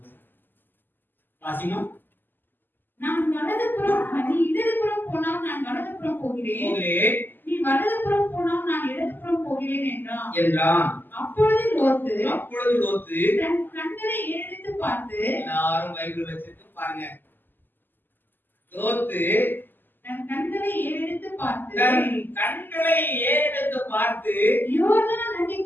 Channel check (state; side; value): late; right; 0.092 ms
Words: வாசிமா. நான் வலதுபுறம், நீ இடதுபுறம் போனால் நான் வலதுபுறம் போகிறேன், நீ வலதுபுறம் போனால் நான் இடதுபுறம் போகிறேன் என்றான். அப்பொழுது லோத்து தன் கண்களை ஏறெடுத்து பார்த்து, எல்லாரும் பைபிள் வச்சிட்டு பாருங்க. லோத்து தன் கண்களை ஏறெடுத்து பார்த்து யோர்தான்